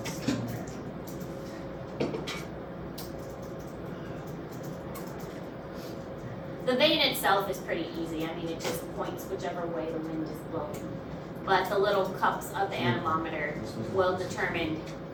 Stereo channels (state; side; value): identical; both; correlation 1.00